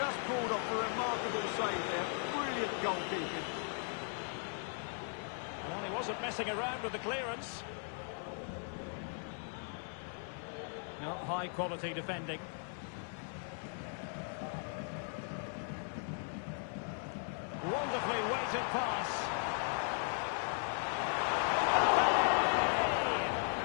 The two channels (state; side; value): silent; right; 53 dB below the other